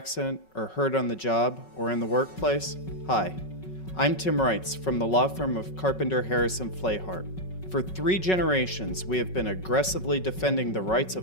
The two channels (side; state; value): right; late; 5.4 ms